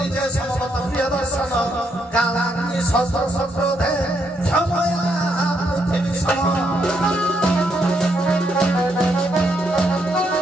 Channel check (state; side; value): normal; both; correlation 0.77